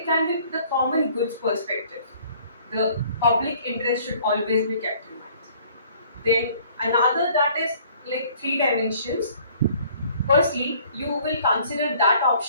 can be the common goods perspective. The public interest should always be kept in mind. Then another that is like three dimensions. Firstly, you will consider that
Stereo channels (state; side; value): inverted; both; correlation -0.56